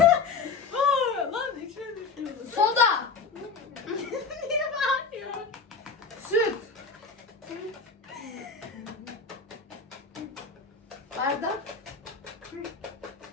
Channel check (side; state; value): right; quieter; 4.8 dB